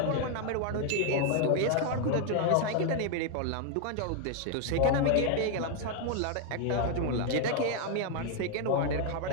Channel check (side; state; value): both; different; correlation 0.01